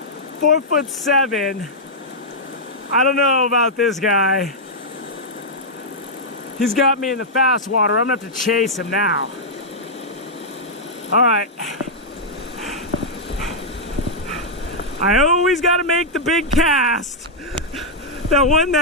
4'7". I don't know about this guy. He's got me in the fast water. I'm gonna have to chase him now. All right. I always gotta make the big cast. That one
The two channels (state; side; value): normal; both; correlation -0.07